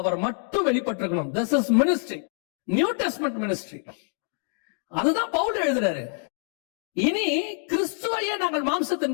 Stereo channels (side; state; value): right; silent; 58 dB below the other